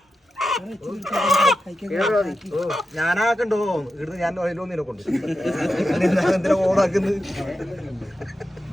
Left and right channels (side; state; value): both; normal; correlation 0.90